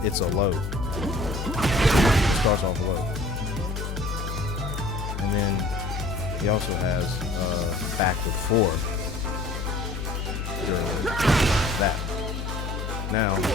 It's a low. It starts off low. And then he also has back with 4 during that. Now, I'll do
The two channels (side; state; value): left; noise; hum, 5 dB below the sound